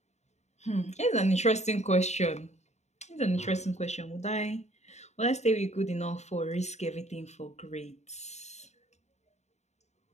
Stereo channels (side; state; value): right; late; 0.32 ms